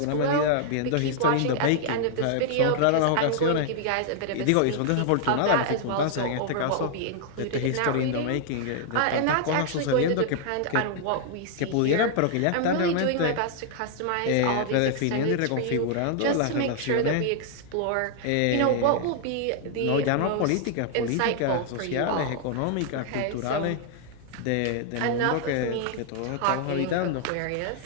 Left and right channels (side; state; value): both; different; correlation 0.00